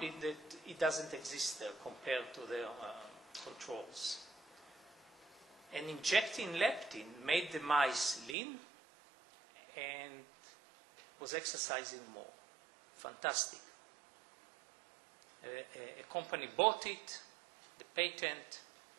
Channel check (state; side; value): drops out; left; at 8.3 s